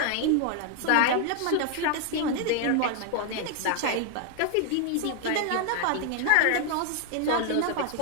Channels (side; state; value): both; different; correlation 0.00